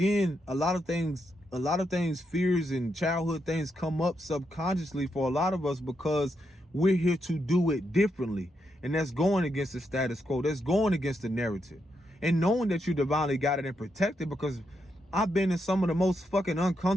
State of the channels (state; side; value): normal; both; correlation 0.82